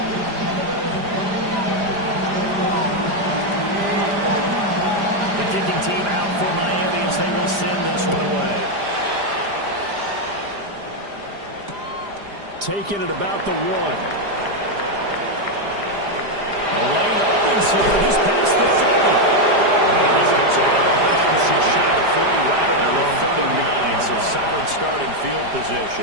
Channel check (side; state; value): left; late; 5.0 ms